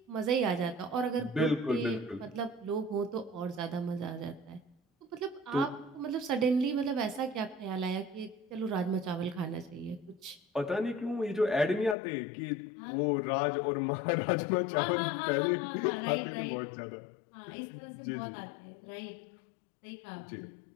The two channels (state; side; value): drops out; right; at 12.0 s